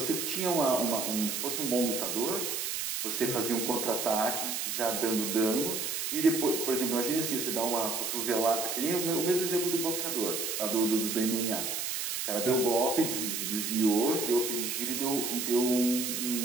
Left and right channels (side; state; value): right; noise; hiss, 2 dB below the sound